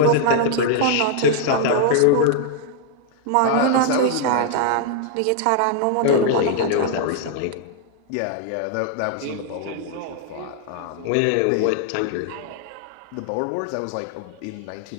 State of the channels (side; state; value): both; different; correlation 0.00